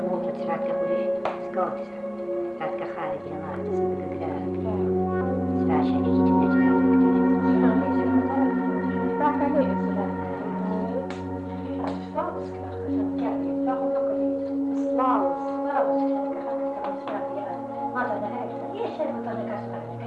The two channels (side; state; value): both; identical; correlation 1.00